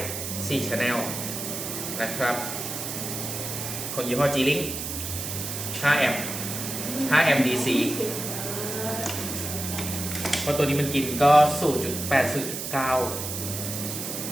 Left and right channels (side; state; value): right; noise; hiss, 5 dB below the sound